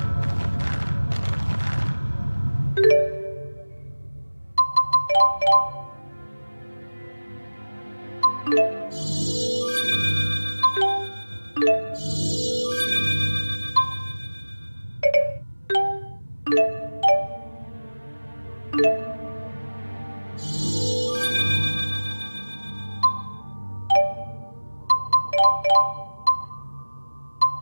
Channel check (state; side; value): inverted; both; correlation -1.00